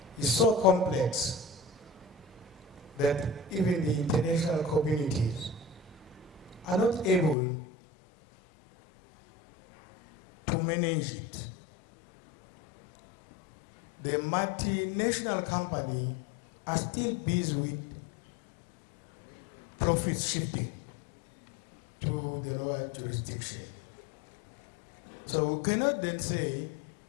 is so complex that even the international communities are not able to manage it. The multinational company are still busy with profit shifting to the lower jurisdiction. So we cannot then say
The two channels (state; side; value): drops out; right; at 7.4 s